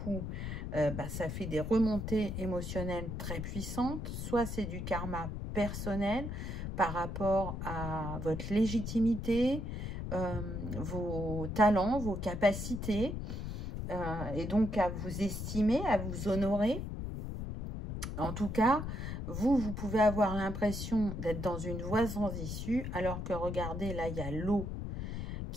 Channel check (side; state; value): left; noise; rumble, 5 dB below the sound